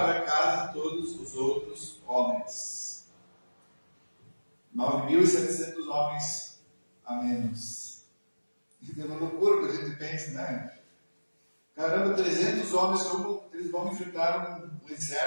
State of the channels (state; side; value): inverted; both; correlation -1.00